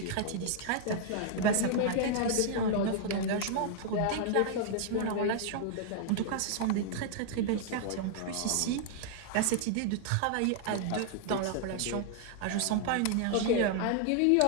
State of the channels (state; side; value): different; both; correlation 0.00